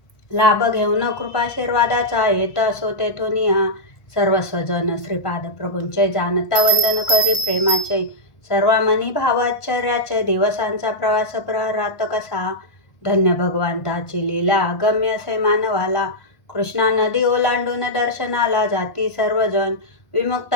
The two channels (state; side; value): late; right; 1.5 ms